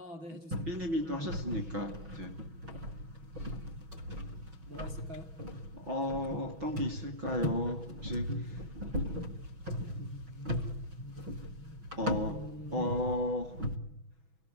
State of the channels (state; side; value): late; left; 6.1 ms